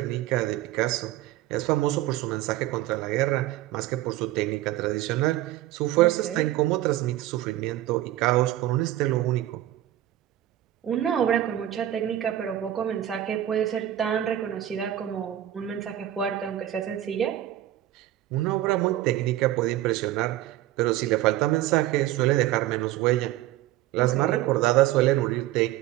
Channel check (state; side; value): quieter; left; 13.6 dB